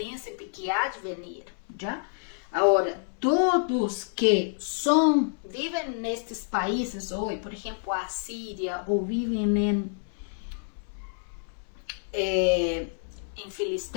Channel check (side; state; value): right; silent; 59 dB below the other